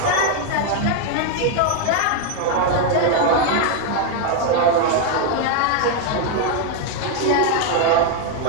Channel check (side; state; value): both; different; correlation 0.01